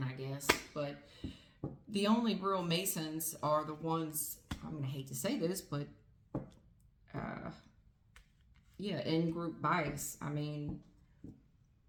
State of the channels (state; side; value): identical; both; correlation 1.00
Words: I guess. But the only real Masons are the ones, I'm gonna hate to say this, but yeah, in-group bias. I mean,